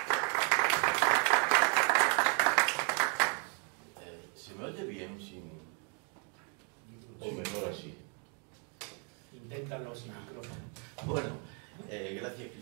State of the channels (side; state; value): left; quieter; 37.2 dB